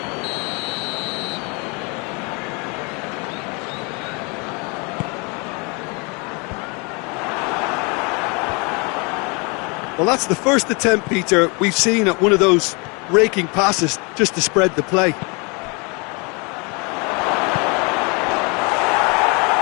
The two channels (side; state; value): right; quieter; 31.0 dB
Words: Well, that's the first attempt, Peter, we've seen at one of those raking passes just to spread the play.